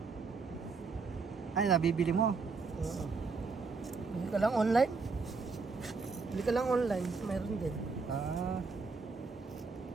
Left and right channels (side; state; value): left; quieter; 4.5 dB